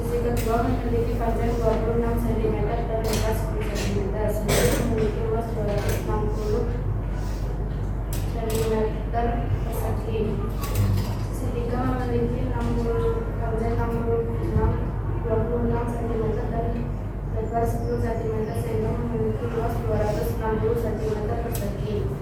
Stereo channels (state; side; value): identical; both; correlation 1.00